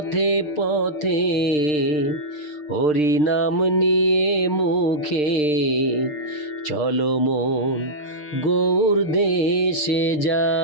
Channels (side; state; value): right; late; 6.7 ms